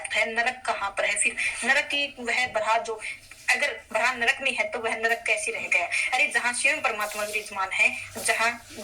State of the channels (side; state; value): both; identical; correlation 1.00